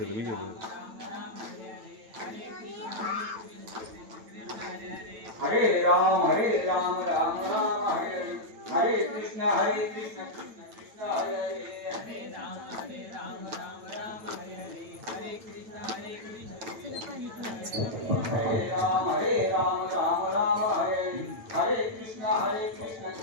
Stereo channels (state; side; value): late; left; 9.0 ms